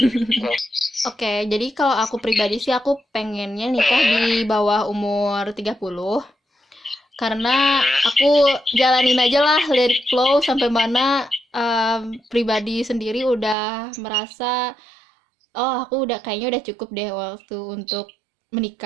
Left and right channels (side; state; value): left; drops out; at 13.6 s